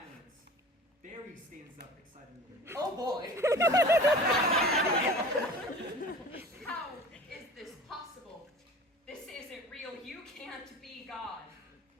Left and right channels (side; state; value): both; normal; correlation 0.41